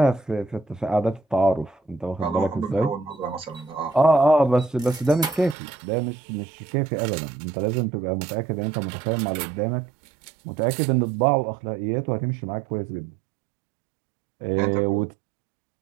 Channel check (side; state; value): left; drops out; at 5.6 s